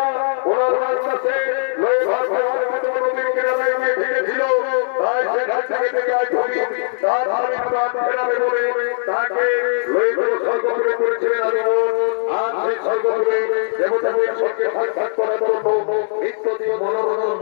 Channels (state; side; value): silent; right; digital silence